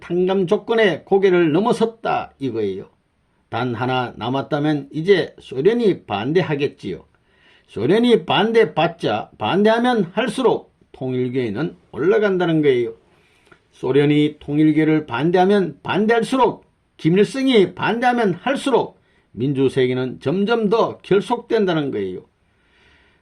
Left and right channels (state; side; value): identical; both; correlation 1.00